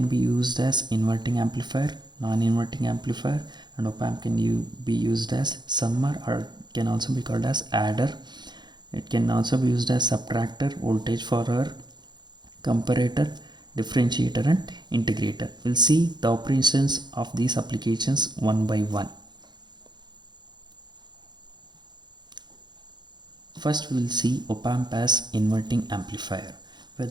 be used as inverting amplifier, non-inverting amplifier, and op-amp can be used as summer, or can also be called as adder. It can also be used as subtractor, voltage follower, comparator, differentiator, and integrator. We'll see the operations of these applications one by one. First we will see op-amp as inverting amplifier, where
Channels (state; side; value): late; left; 0.21 ms